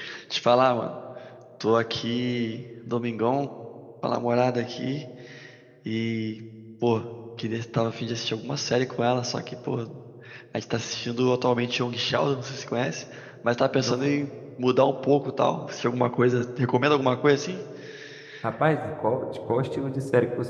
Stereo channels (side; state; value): both; identical; correlation 1.00